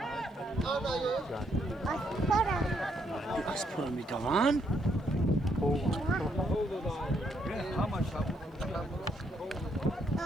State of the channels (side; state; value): both; normal; correlation 0.74